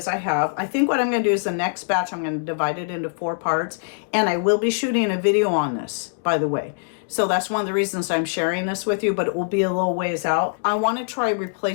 I have. I think what I'm going to do is the next batch, I'm going to divide it into 4 parts, and I will be shooting a video on this, by the way. So that's one of the reasons I'm sharing this with you, but it will be a little ways out. I want to try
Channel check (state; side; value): silent; right; digital silence